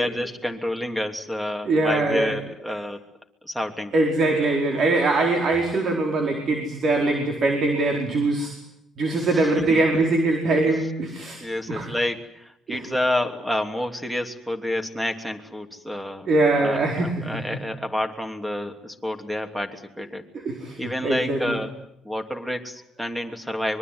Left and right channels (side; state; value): both; normal; correlation 0.76